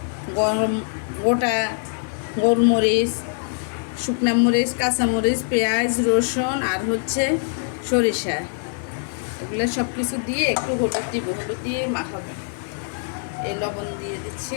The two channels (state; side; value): silent; right; digital silence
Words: গোটা গোলমরিচ, শুকনা মরিচ, কাঁচামরিচ, পেঁয়াজ, রসুন আর হচ্ছে সরিষা, এগুলো সব কিছু দিয়ে একটু হলুদ দিব, হলুদ দিয়ে মাখাবো। এই লবণ দিয়ে